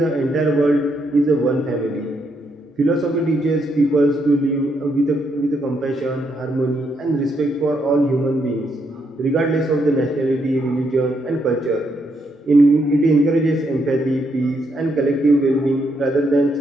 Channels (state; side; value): normal; both; correlation 0.77